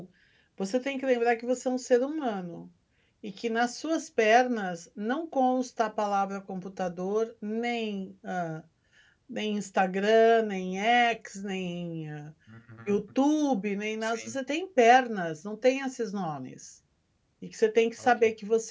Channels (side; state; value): both; identical; correlation 1.00